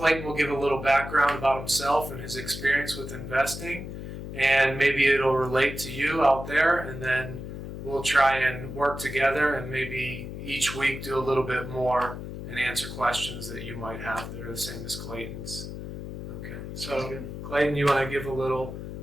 will give a little background about himself and his experience with investing. And maybe it'll relate to you out there. And then we'll try and work together and maybe each week do a little bit more and answer questions that you might have that are the same as Clayton's. Okay, so Clayton, you want to give a little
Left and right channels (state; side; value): noise; left; hum, 8 dB below the sound